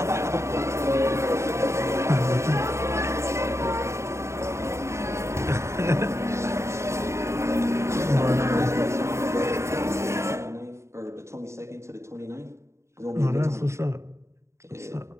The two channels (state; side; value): late; left; 0.14 ms